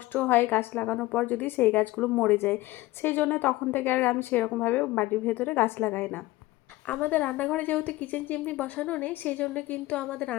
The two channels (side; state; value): right; quieter; 18.7 dB